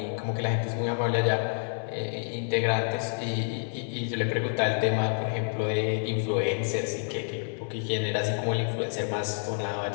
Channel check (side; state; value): right; silent; digital silence